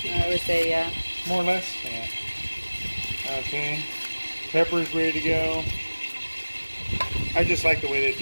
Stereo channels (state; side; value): inverted; both; correlation -1.00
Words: I would say, yeah. More or less? Yeah. Okay. Pepper's ready to go. I just like the way that